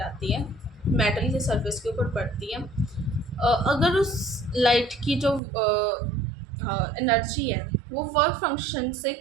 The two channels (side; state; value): left; drops out; at 5.4 s